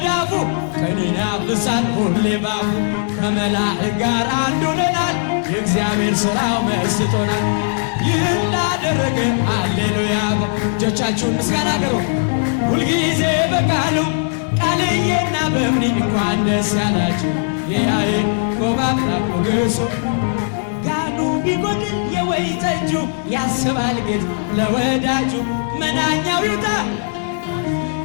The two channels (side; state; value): right; silent; digital silence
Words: ቀንን ያፍሳል ሁሌ ባፉ ከመላእክት ጋር አንድ ሆነናል የእግዚአብሔር ሥራው መስጦናል። ይህን ላደረገ ሃሌሉያ እጆቻችሁን ምስጋና አቅርቡ። ሁልጊዜ በቃሉ ቃልዬና በእምኒ እንኳን ደስ ያላችሁ የያዕቆብ አምላክ ሞገሱ ጋኑ ቢጎድል የወይን ጠጁ ያስባል ጌታ ለወዳጁ መናኛው ይውጣ